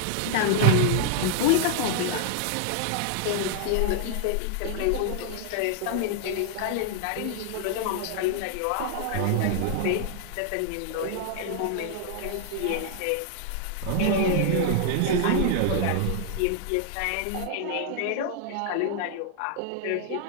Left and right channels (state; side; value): different; both; correlation 0.00